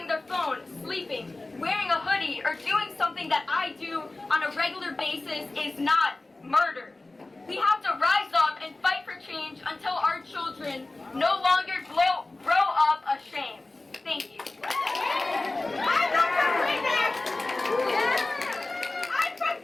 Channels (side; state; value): right; quieter; 3.0 dB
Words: their phone, sleeping, wearing a hoodie, or doing something that I do on a regular basis is not murder. We have to rise up and fight for change until our children no longer grow up ashamed. Thank you. I'm from